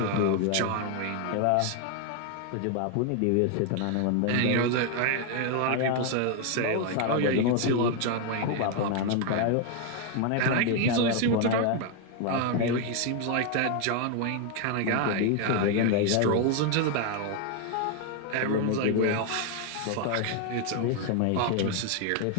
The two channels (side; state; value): both; different; correlation 0.00